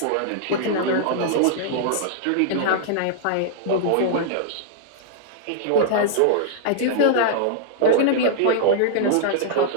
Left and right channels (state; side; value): different; both; correlation -0.01